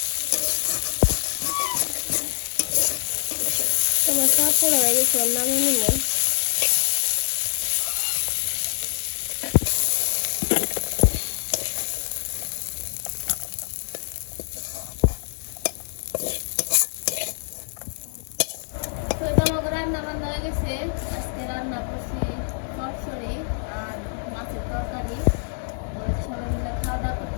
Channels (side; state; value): right; silent; digital silence